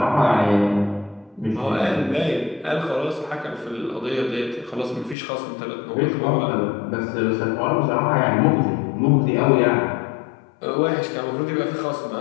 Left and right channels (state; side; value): drops out; right; at 5.2 s